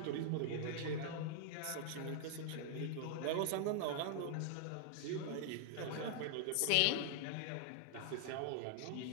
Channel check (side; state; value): both; different; correlation 0.00